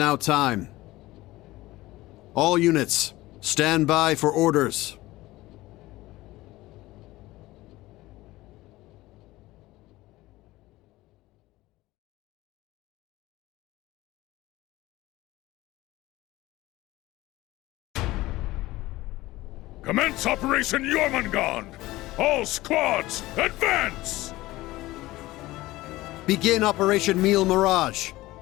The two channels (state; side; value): quieter; right; 18.2 dB